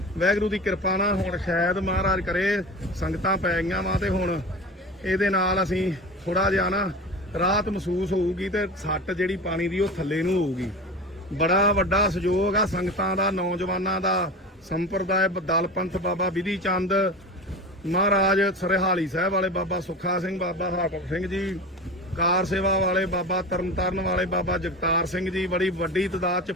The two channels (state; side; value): normal; both; correlation 0.30